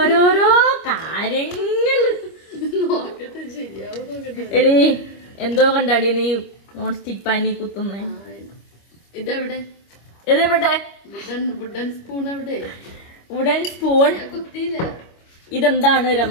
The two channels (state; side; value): late; right; 25 ms